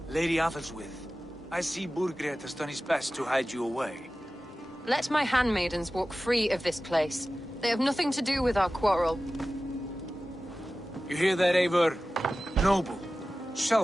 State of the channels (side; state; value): both; normal; correlation 0.96